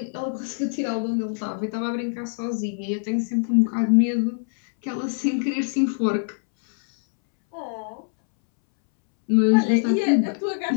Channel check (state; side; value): silent; right; 63 dB below the other